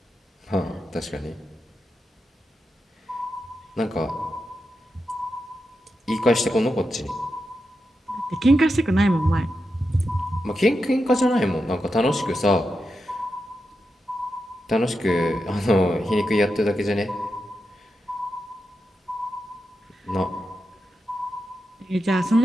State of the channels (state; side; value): normal; both; correlation 0.88